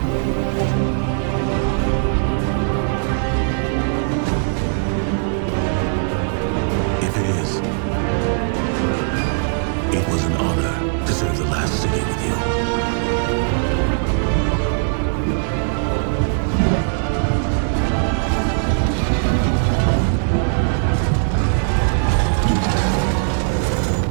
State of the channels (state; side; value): silent; left; 66 dB below the other